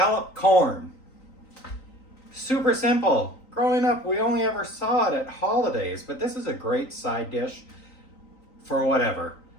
corn. Super simple. Growing up, we only ever saw it at holidays, but this is a great side dish for whatever.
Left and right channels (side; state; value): right; late; 3.9 ms